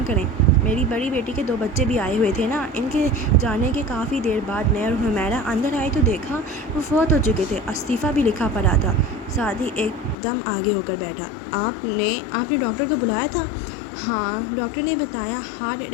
کریں۔ میری بڑی بیٹی کے 2 بچے بھی آئے ہوئے تھے نا۔ ان کے جانے کے کافی دیر بعد میں اور حمیرہ اندر آئی تو دیکھا وہ فوت ہو چکے تھے، استعفیٰ بھی لکھا پڑا تھا۔ سعدی ایک دم آگے ہو کر بیٹھا۔ آپ نے ڈاکٹر کو بلایا تھا؟ ہاں، ڈاکٹر نے بتایا ہارٹ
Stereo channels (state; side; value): drops out; right; at 10.2 s